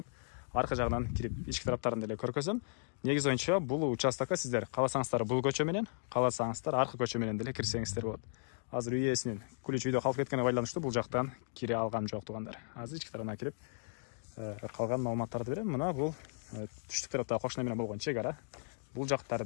аркы жагынан кирип ички тараптарын деле көргөзөм. Негизи боюнча бул участокко сиздер кааласаңыздар бул көчө менен, кааласаңыздар аркы көчө менен деле кирсеңиздер болот. Азыр үй ээсинин ключ үйдө калып кеткенине байланыштуу бул жактан кире алгам жок тугандар. Азыр ички тарабына кирип калган маалыматтарды берем. Мына бул түштүк тарапта кошуна менен болгон чек ара. Бул жактары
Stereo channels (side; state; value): right; silent; digital silence